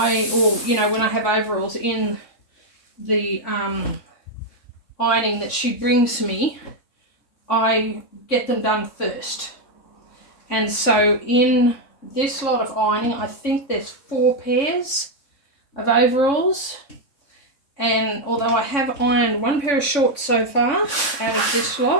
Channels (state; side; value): late; right; 3.6 ms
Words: I have overalls in the ironing that she brings me, I get them done first. And so in this lot of ironing, I think there's 4 pairs of overalls. And although I have ironed 1 pair of shorts so far out of this